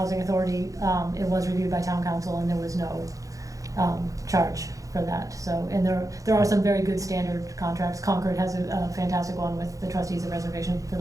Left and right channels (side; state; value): left; late; 0.16 ms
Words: authority, it was reviewed by town council and there was no charge for that. So, and there are some very good standard contracts. Concord has a fantastic one with the trustees of reservation for